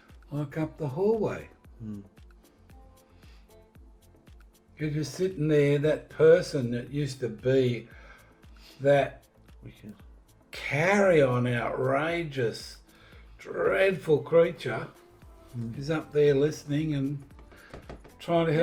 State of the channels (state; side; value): identical; both; correlation 1.00